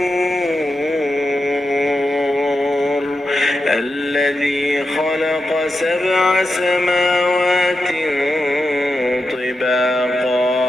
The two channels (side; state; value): both; normal; correlation 0.88